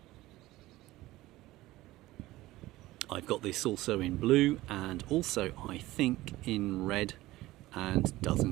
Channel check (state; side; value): quieter; left; 17.5 dB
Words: I've got this also in blue and also I think in red, and